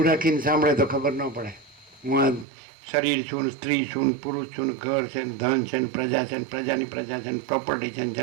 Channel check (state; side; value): drops out; left; at 2.5 s